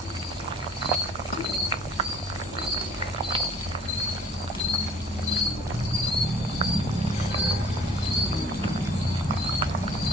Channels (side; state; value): both; normal; correlation 0.53